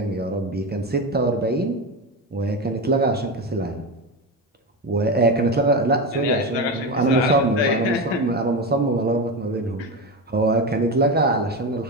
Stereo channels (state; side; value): normal; both; correlation 0.18